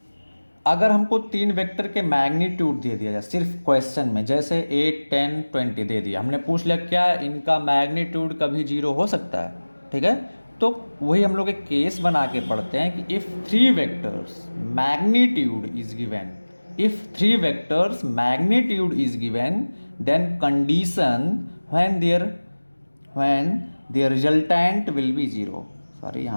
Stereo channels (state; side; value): inverted; both; correlation -1.00